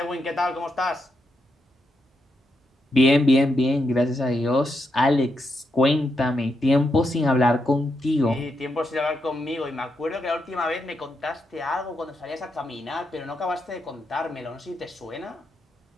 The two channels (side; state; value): both; normal; correlation 0.82